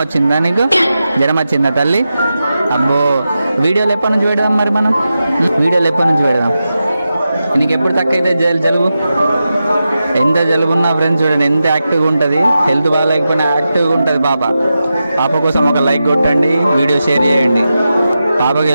వచ్చిందా నీకు? జ్వరం వచ్చిందా తల్లి? అబ్బో, వీడియోలు ఎప్పటి నుంచి పెడదాం మరి మనం? వీడియోలు ఎప్పటి నుంచి పెడదాం? నీకు ఎప్పుడు తక్కువైతే జలుబు? ఎంత జలుబు ఉన్నా ఫ్రెండ్స్ చూడండి ఎంత యాక్టివ్గా ఉంటుంది. హెల్త్ బాగాలేకపోయినా యాక్టివ్గా ఉంటుంది పాప. పాప కోసం ఒక లైక్ కొట్టండి, వీడియో షేర్ చేయండి. పాపకి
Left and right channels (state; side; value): inverted; both; correlation -0.91